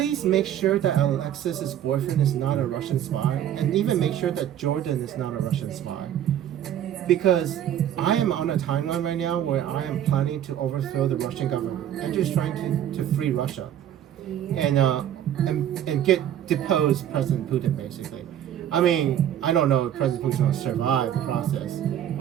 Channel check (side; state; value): left; quieter; 10.6 dB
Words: make sure that Alexis's boyfriend is not a Russian spy, and even make sure that Jordan is not a Russian spy. Because I am on a timeline right now where I am planning to overthrow the Russian government. I'm just trying to free Russia. And get depose President Putin, basically. I mean, I don't know if President Putin will survive the process,